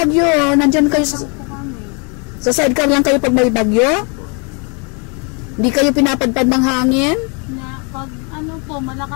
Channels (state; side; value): quieter; right; 34.9 dB